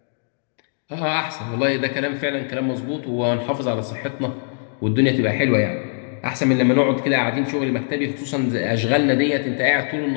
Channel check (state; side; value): silent; right; digital silence